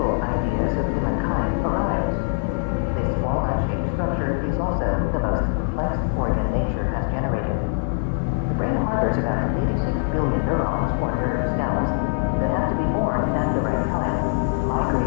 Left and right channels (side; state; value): right; silent; digital silence